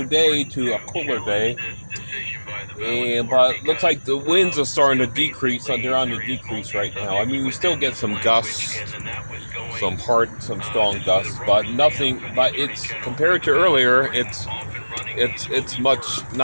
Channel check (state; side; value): inverted; both; correlation -1.00